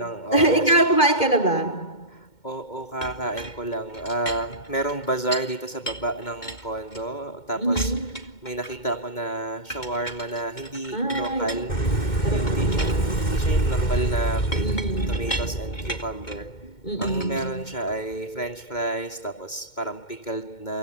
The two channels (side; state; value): right; late; 2.2 ms